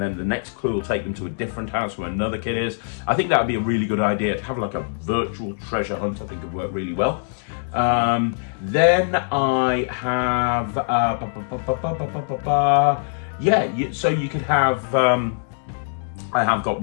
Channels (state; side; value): silent; right; digital silence